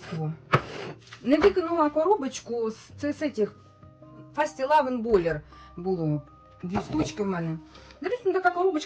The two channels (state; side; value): identical; both; correlation 1.00